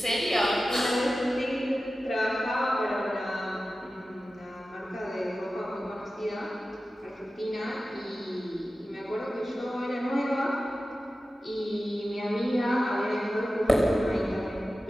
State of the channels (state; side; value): normal; both; correlation 0.95